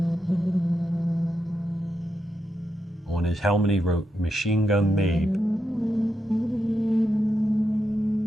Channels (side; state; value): both; normal; correlation 0.85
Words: On his helmet he wrote, "Machine Gun Mabe."